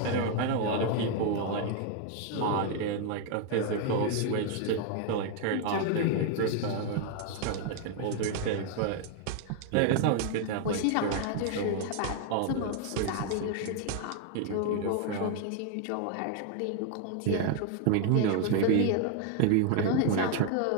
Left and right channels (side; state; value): both; different; correlation 0.00